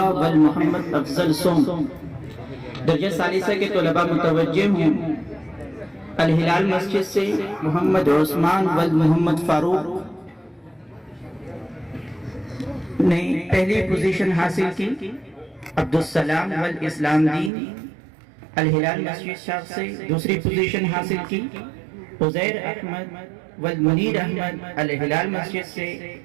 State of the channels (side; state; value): left; drops out; at 17.5 s